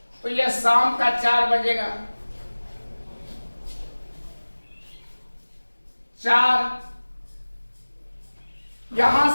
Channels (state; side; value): inverted; both; correlation -1.00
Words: तो यह शाम का 4 बजेगा। 4